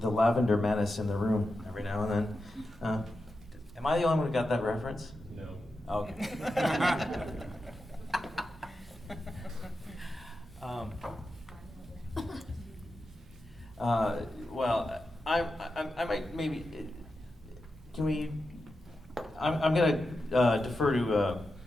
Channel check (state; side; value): normal; both; correlation 0.90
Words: The lavender menace in the room every now and then. Am I the only one who got that reference? No. Okay. Well, I might maybe. Can we? I'm going to defer to